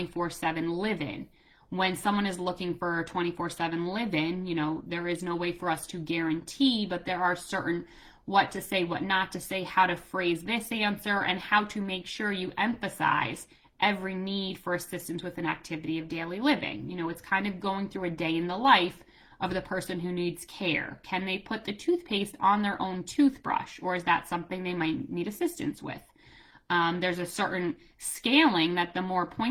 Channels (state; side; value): identical; both; correlation 1.00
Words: live-in. When someone is looking for a 24/7 live-in, there is no way for us to guarantee, but there are certain what to say, what not to say, how to phrase this answer, and how to make sure you emphasize every need for assistance with an activity of daily living. It's kind of going through a day in the life of the person who needs care. Can they put the toothpaste on their own toothbrush, or is that something they might need assistance with? There's a certain scaling that the more